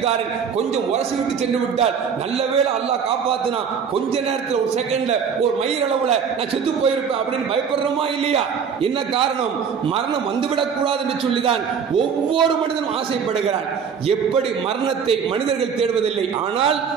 கொஞ்சம் உரசி விட்டு சென்று விட்டால் நல்ல வேளை அல்லாஹ் காப்பாத்தினா, கொஞ்ச நேரத்தில் ஒரு செகண்ட்ல ஒரு மயிர் அளவுல நான் செத்து போயிருப்பேன் அப்படின்னு பயப்படுறோமா இல்லையா? என்ன காரணம்? மரணம் வந்துவிடக் கூடாது என்று சொல்லிதான் ஒவ்வொரு மனிதனும் ஆசைப்படுகிறான். எப்படி மரணத்தை மனிதர்கள் தேடுவதில்லை, ஆனால்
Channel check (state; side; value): quieter; left; 6.8 dB